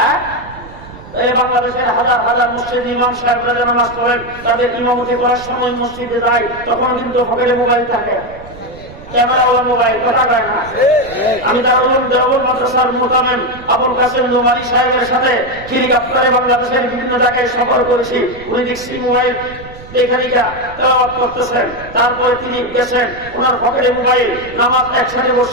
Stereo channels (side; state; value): right; noise; rumble, 17 dB below the sound